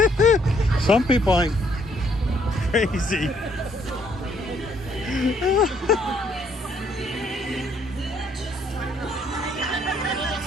Some people ain't crazy.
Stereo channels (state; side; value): normal; both; correlation 0.68